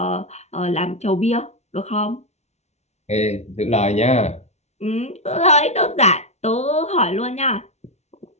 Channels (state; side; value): late; right; 0.32 ms